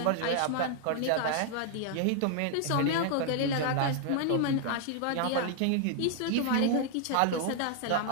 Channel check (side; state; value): both; different; correlation 0.00